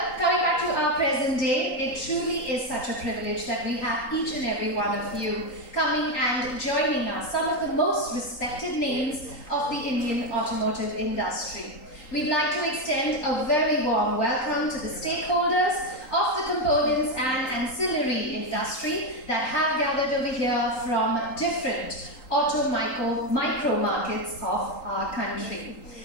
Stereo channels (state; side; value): late; right; 3.8 ms